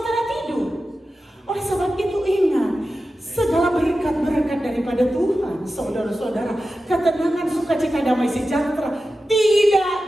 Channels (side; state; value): both; normal; correlation 0.93